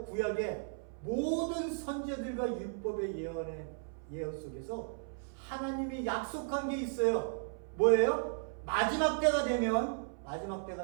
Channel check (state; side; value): silent; left; 54 dB below the other